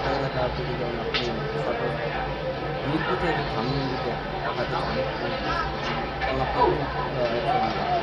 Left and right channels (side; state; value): both; identical; correlation 1.00